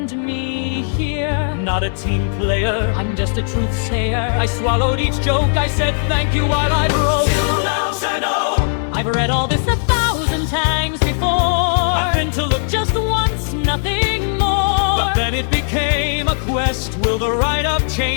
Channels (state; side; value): silent; right; digital silence